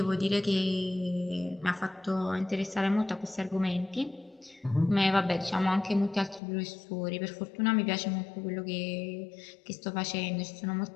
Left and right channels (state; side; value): drops out; right; at 6.4 s